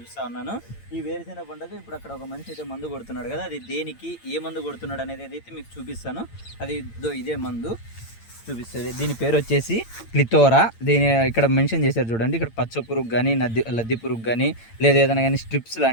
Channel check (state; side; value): late; right; 8.8 ms